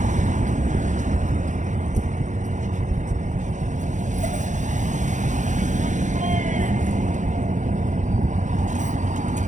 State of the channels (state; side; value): late; left; 0.36 ms